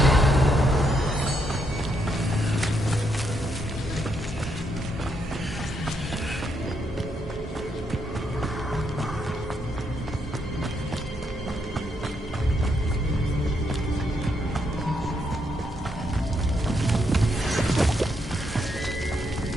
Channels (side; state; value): both; normal; correlation 0.77